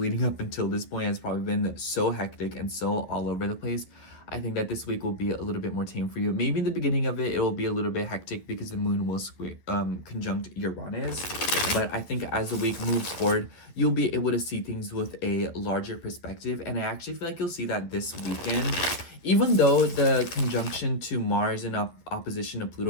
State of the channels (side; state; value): right; late; 11 ms